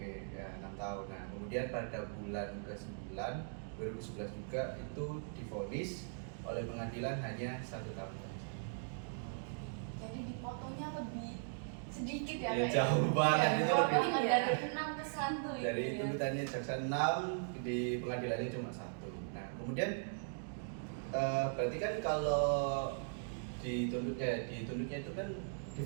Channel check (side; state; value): left; silent; digital silence